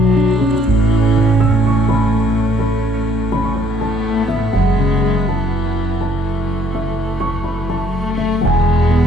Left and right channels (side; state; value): both; normal; correlation 0.63